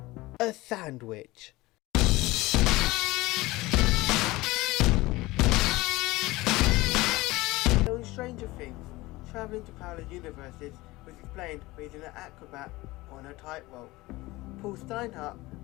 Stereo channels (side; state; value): right; quieter; 20.2 dB